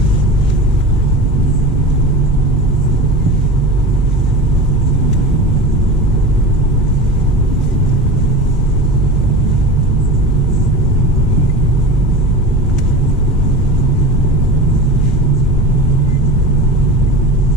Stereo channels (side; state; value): both; normal; correlation 0.30